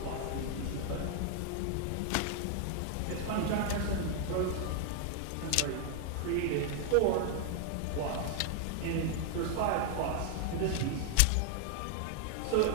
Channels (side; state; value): both; different; correlation 0.00